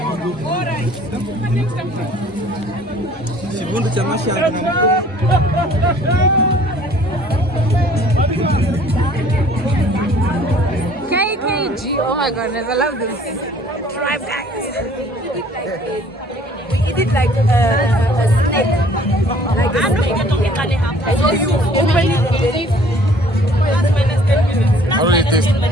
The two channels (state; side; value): normal; both; correlation 0.55